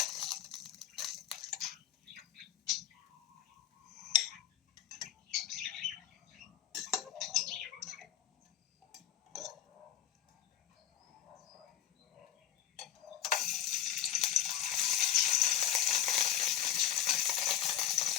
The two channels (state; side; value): quieter; right; 11.1 dB